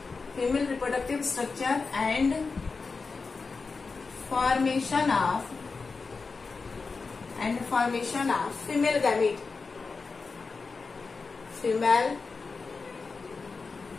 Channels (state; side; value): quieter; right; 4.4 dB